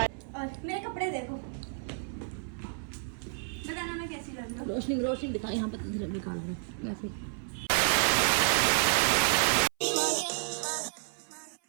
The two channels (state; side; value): silent; left; 57 dB below the other